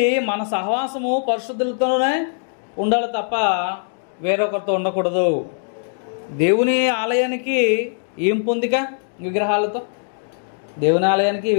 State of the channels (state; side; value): silent; right; digital silence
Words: మన సహవాసము పరిశుద్ధులతోనే ఉండాలి తప్ప వేరొకరితో ఉండకూడదు. దేవుని ఆలయానికి ఏం పొందిక? విగ్రహాలతో. దేవుని ఆలయానికి